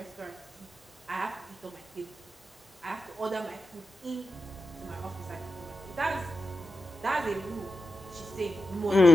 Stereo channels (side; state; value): both; normal; correlation 0.90